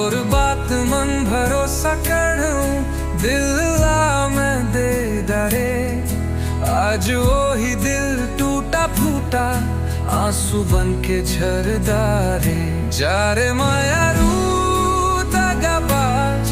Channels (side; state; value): both; identical; correlation 1.00